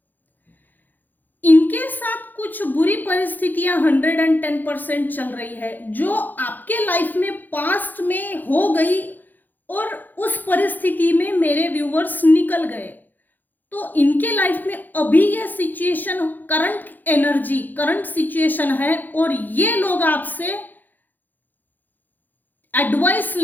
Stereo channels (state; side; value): late; right; 0.086 ms